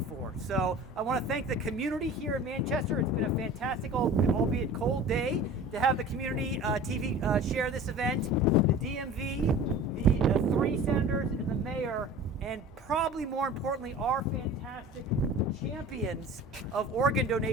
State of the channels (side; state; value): both; normal; correlation 0.40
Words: for. So I want to thank the community here in Manchester. It's been a fantastic, albeit cold day, to have the community TV share this event. The DMV, the 3 senators, and the mayor, and probably more importantly, our fantastic champions of organ